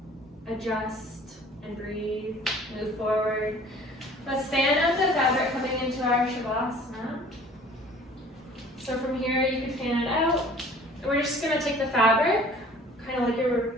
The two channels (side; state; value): both; normal; correlation 0.50